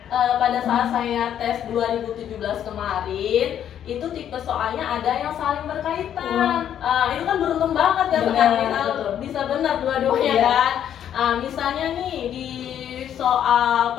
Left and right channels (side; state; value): right; quieter; 9.9 dB